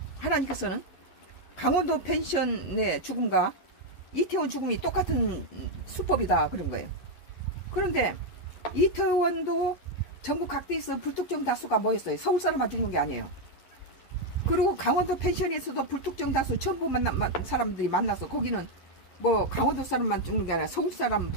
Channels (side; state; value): right; late; 11 ms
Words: 하나님께서는 강원도 펜션의 죽음과 이태원 죽음이 똑같은 수법이다 그런 거예요. 그런데 이태원도 전국 각지에서 불특정 다수가 모였어요. 서울 사람만 죽는 게 아니에요. 그리고 강원도 펜션에서도 불특정 다수 전부 사람들이 만나서 거기는 뭐 강원도 사람만 죽는 게 아니라 서울 사람,